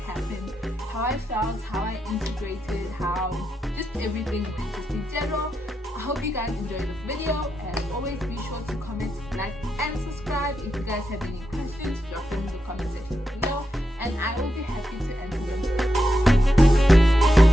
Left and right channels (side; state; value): both; normal; correlation 0.86